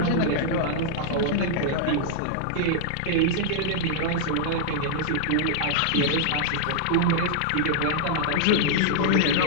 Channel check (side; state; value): both; different; correlation -0.01